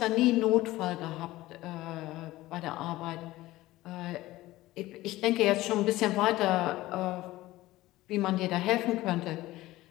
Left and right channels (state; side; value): quieter; right; 17.3 dB